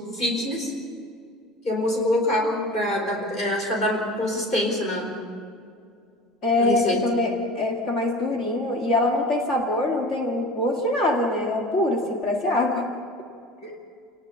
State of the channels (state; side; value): normal; both; correlation 0.38